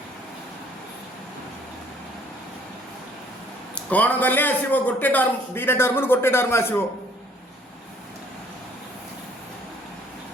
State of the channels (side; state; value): both; normal; correlation 0.60